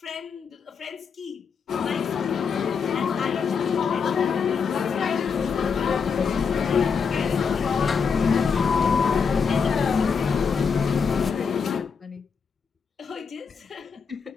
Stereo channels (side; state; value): right; quieter; 6.0 dB